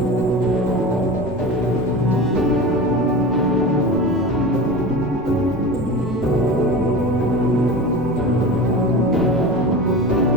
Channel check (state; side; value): noise; right; rumble, 17 dB below the sound